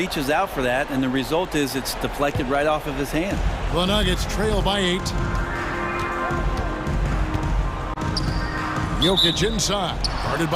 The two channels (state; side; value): identical; both; correlation 1.00